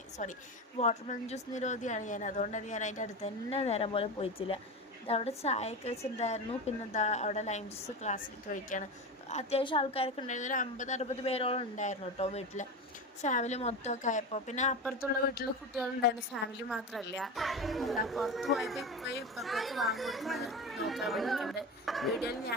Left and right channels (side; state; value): both; normal; correlation 0.23